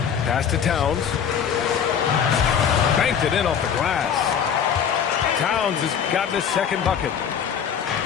Pass to Towns. Banked it in off the glass. Towns has gotten his second bucket.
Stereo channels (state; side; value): quieter; right; 7.8 dB